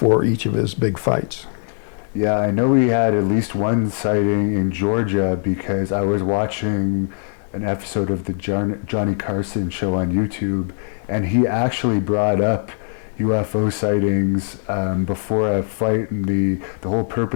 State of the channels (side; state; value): right; silent; digital silence